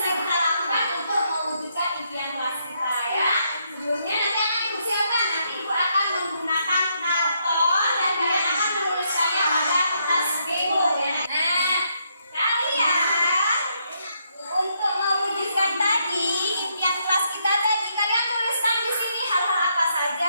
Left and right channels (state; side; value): inverted; both; correlation -0.76